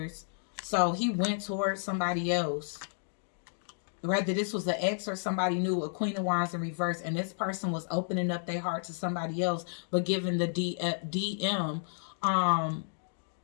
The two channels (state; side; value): silent; right; digital silence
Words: So he went towards somebody else. Whether this was an ex or somebody new, a Queen of Wands in reverse. And this person was opening up their heart to somebody else, but giving the DM,